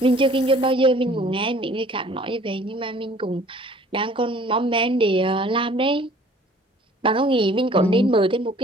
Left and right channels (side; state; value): both; normal; correlation 0.53